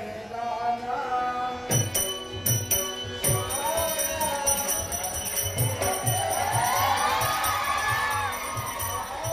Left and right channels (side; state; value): both; identical; correlation 1.00